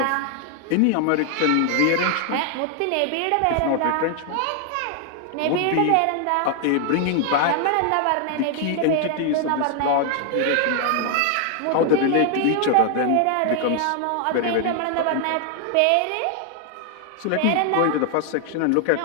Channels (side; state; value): both; different; correlation 0.00